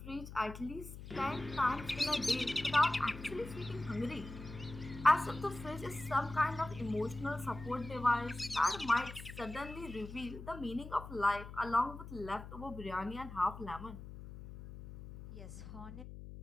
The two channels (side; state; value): left; noise; hum, 12 dB below the sound